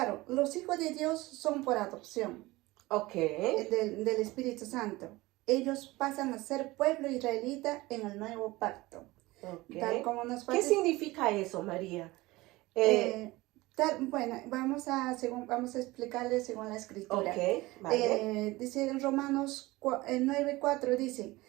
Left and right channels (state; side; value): quieter; left; 20.3 dB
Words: los hijos de Dios son por adopción Ok, del Espíritu Santo. Ellos pasan a ser pueblo israelita en el nuevo pacto. Tal ok. como nos ¿Qué parece. significa eso, María? Bueno, vamos a explicarle según la escritura. Ok, vale. Dice en Romanos 9:4, dice,